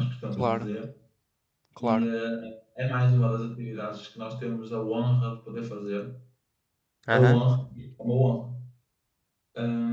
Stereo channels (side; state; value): both; identical; correlation 1.00